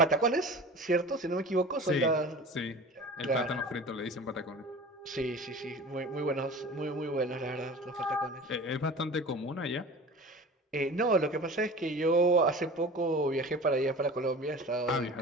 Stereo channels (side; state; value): both; normal; correlation 0.38